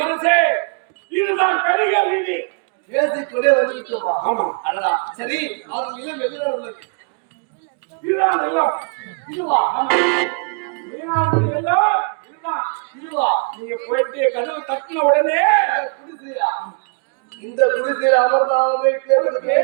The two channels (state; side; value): quieter; left; 38.7 dB